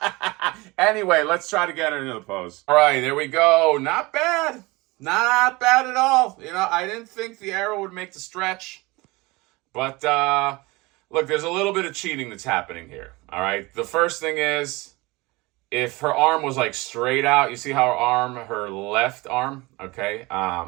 Anyway, let's try to get her into the pose. All right, there we go. Not bad. Not bad at all. You know, I didn't think the arrow would make the stretch. But, look, there's a little bit of cheating that's happening here. All right, the first thing is, if her arm was, like, straight out, you see how her left arm, okay?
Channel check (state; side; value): quieter; left; 23.2 dB